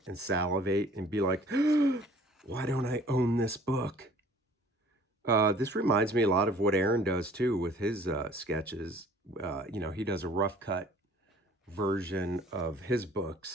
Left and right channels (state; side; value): normal; both; correlation 0.52